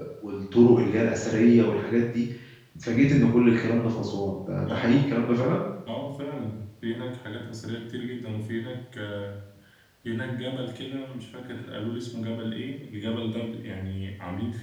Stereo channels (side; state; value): both; identical; correlation 1.00